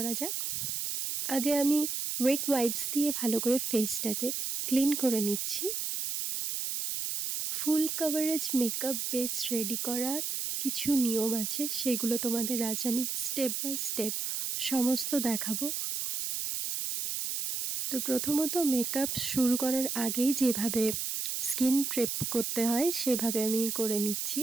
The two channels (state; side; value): noise; right; hiss, 2 dB below the sound